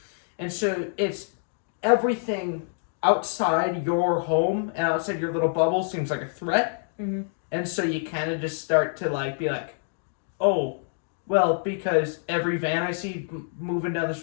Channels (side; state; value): right; silent; digital silence